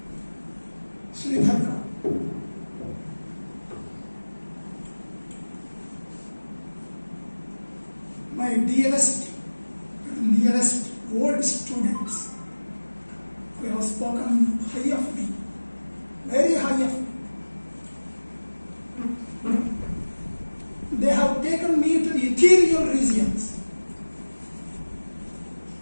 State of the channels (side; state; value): both; inverted; correlation -1.00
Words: Sri Dharga. My dearest and nearest old students who have spoken high of me, very high of me. They have taken me to the ethereal regions,